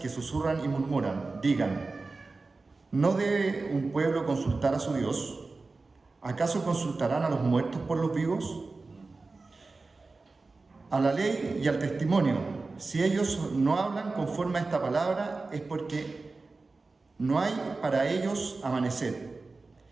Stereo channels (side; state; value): left; quieter; 3.7 dB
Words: susurran y murmuran, digan, ¿no debe un pueblo consultar a su Dios? ¿Acaso consultarán a los muertos por los vivos? A la ley y al testimonio, si ellos no hablan conforme a esta palabra, es porque no hay para ellos amanecer,